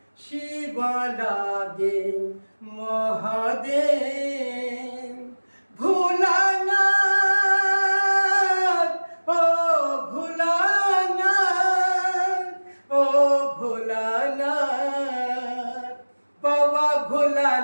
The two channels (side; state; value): both; inverted; correlation -1.00